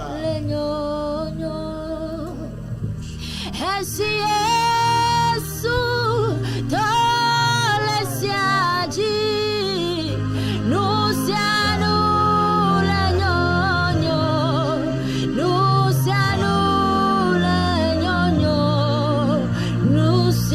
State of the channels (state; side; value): identical; both; correlation 1.00